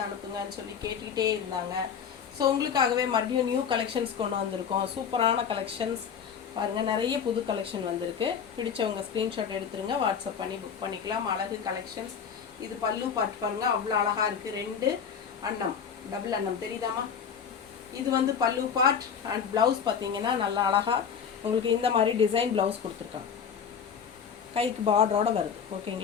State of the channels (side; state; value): right; quieter; 7.2 dB